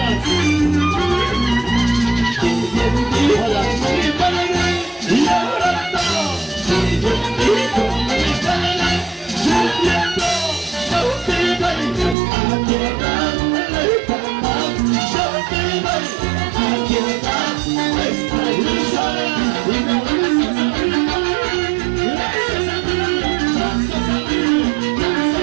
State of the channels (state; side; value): drops out; left; at 12.2 s